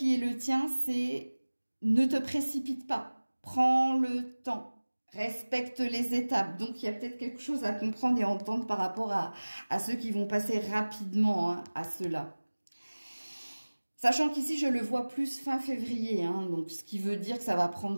est le tien, c'est ne te précipite pas. Prends le temps. Respecte les étapes. Donc, il y a peut-être quelque chose à comprendre et entendre par rapport à ceux qui vont passer rapidement à cela. Sachant qu'ici, je le vois plus fin février. Donc, ce qui veut dire que ça va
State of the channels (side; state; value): both; inverted; correlation -1.00